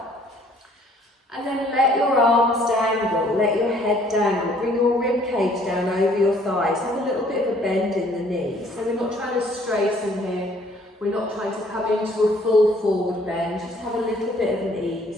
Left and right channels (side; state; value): both; normal; correlation 0.60